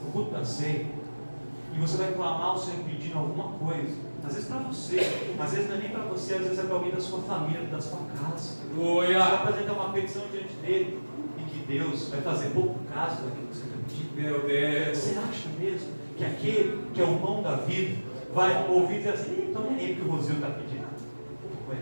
no culto da ceia, e você vai clamar ao Senhor pedindo alguma coisa, às vezes para você, às vezes não é nem para você, às vezes é para alguém da sua família, da sua casa. Você vai apresentar uma petição diante dele, e que Deus vai fazer pouco caso daquilo que você está pedindo. Meu Deus. Você acha mesmo que aquele que é o pão da vida vai ouvir e dizer assim, então nem é ele que o Rosil está pedindo? Não,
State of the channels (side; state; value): both; inverted; correlation -1.00